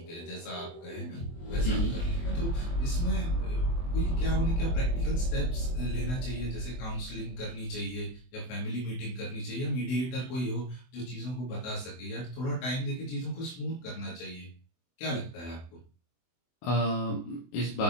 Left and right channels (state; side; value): late; right; 24 ms